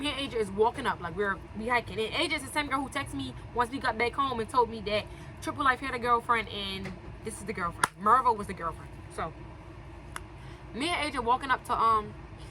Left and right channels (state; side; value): identical; both; correlation 1.00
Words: and Asia is walking up like we hiking. And Asia is the same girl who texted me once we got back home and told me that Triple Life had a girlfriend and this is the girlfriend. Mervo was the girlfriend. So me and Asia walking up to